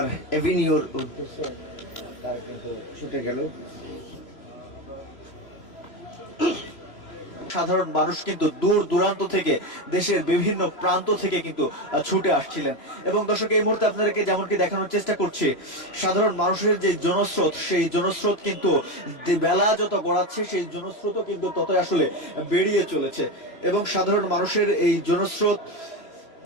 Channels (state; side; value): late; right; 3.0 ms